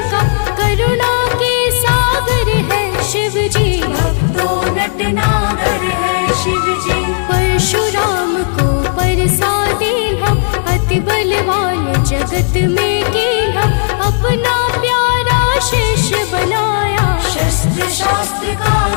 करुणा के सागर है शिव जी, भक्तों नटनागर है शिव जी। परशुराम को परसा दीन्हा, अति बलवान जगत में कीन्हा, अपना प्यारा शिष्य बनाया, शस्त्र शास्त्र का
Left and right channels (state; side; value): silent; right; digital silence